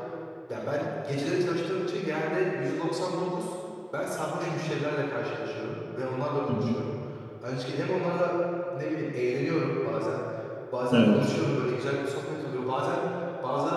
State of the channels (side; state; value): both; identical; correlation 1.00